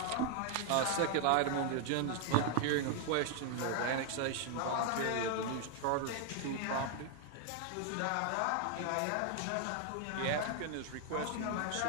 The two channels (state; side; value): different; both; correlation 0.00